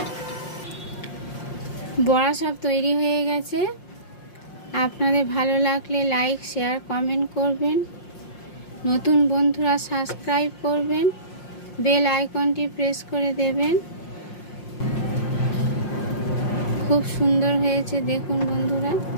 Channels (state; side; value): late; right; 5.6 ms